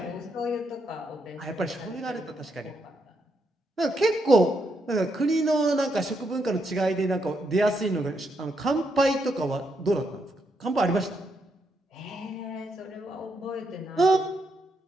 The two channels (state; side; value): normal; both; correlation 0.79